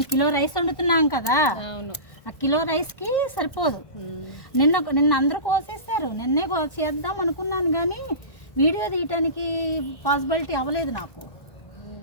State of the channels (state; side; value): late; right; 1.5 ms